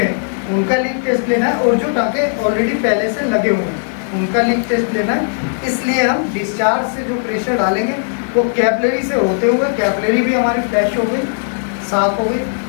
है, उनका लीक टेस्ट लेना है, और जो टाके ऑलरेडी पहले से लगे हुए हैं उनका लीक टेस्ट लेना है। इसलिए हम डिस्चार्ज से जो प्रेशर डालेंगे वो कैपिलरी से होते हुए, कैपिलरी भी हमारी फ्लैश हो गई, साफ हो गई,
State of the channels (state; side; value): silent; right; digital silence